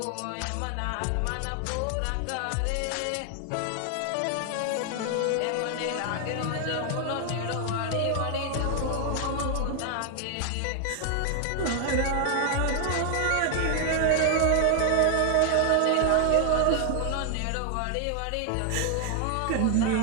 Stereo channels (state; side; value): different; both; correlation 0.00